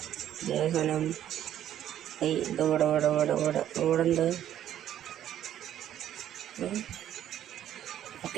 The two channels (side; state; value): left; quieter; 11.3 dB